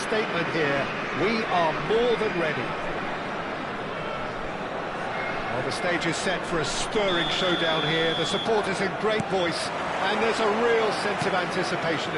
here. We are more than ready. Well, the stage is set for a stirring showdown here. The supporters in great voice, and there's a real sense of anticipation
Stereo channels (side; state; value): both; identical; correlation 1.00